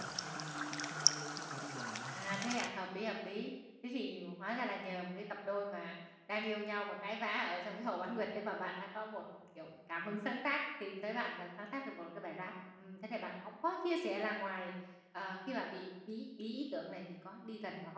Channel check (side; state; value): both; identical; correlation 1.00